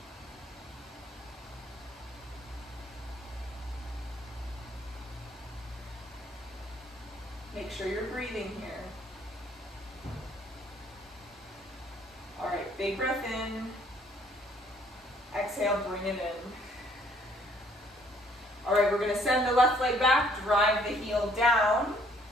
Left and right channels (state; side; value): normal; both; correlation 0.63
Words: Make sure you're breathing here. All right, big breath in. Exhale, bring it in. All right, we're going to send the left leg back, drive the heel down.